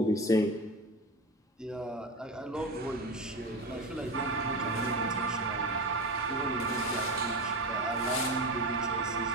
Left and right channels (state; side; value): normal; both; correlation 0.23